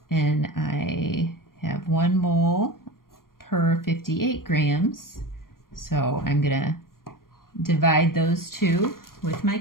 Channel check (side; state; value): right; late; 0.91 ms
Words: and I have 1 mole per 58 grams. So I'm going to divide those two with my